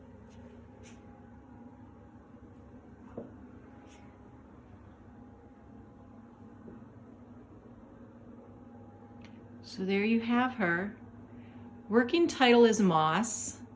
So there you have her. Working title is Moss.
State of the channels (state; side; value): identical; both; correlation 1.00